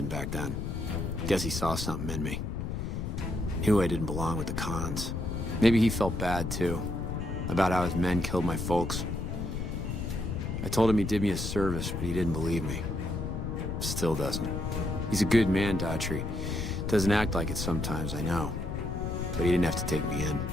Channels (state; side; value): noise; left; rumble, 4 dB below the sound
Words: back then. Guess he saw something in me. Knew I didn't belong with the cons. Maybe he felt bad, too. About how his men killed my folks. I told him he did me a service, but he didn't believe me. Still doesn't. He's a good man, Daughtry. Doesn't act like it sometimes, I know. But he didn't have to take me in.